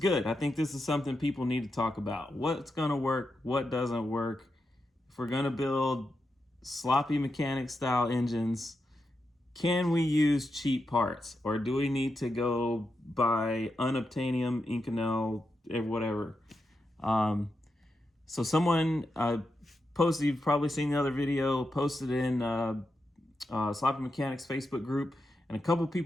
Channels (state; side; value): normal; both; correlation 0.87